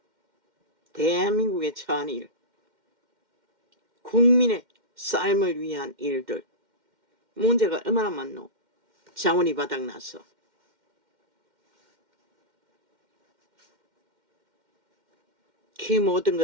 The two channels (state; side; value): late; left; 2.1 ms